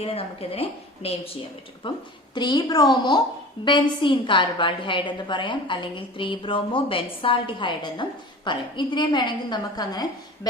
നമുക്കിതിനെ നെയിം ചെയ്യാൻ പറ്റും. അപ്പം 3 ബ്രോമോ ബെൻസീൻ കാർബാൾഡിഹൈഡ് എന്ന് പറയാം, അല്ലെങ്കിൽ 3 ബ്രോമോ ബെൻസാൾഡിഹൈഡ് എന്നും പറയും. ഇതിനെ വേണമെങ്കിൽ നമുക്ക് അങ്ങനെ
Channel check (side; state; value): both; normal; correlation 0.38